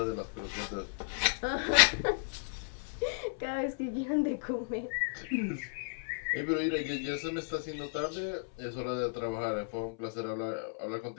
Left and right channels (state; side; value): silent; right; 55 dB below the other